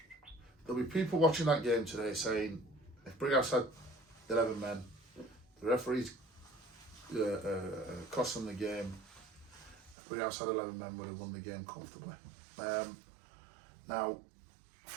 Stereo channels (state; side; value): drops out; left; at 10.0 s